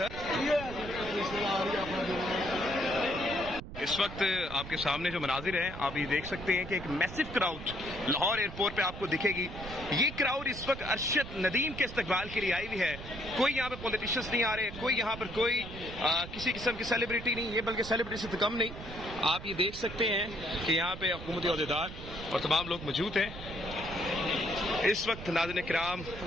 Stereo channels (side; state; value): right; noise; rumble, 11 dB below the sound